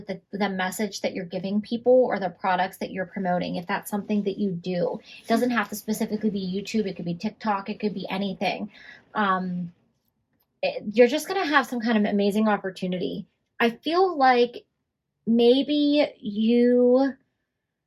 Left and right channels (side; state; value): both; identical; correlation 1.00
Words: the message that you're giving people or the products that you're promoting, if that's something that you do. It doesn't have to specifically be YouTube. It could be TikTok. It could be anything. You're just going to have some kind of amazing opportunity. I feel like maybe